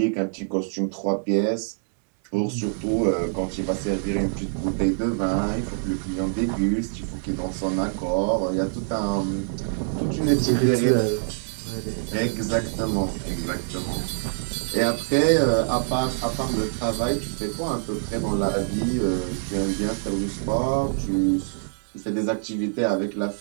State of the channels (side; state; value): left; silent; 62 dB below the other